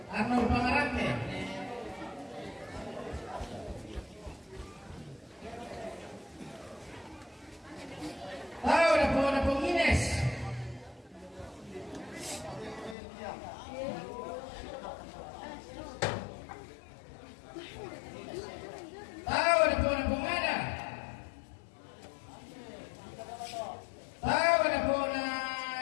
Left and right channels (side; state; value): right; drops out; at 13.0 s